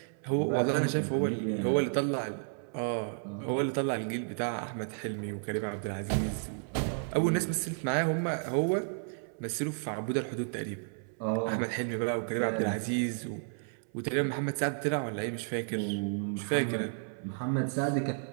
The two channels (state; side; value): silent; left; 56 dB below the other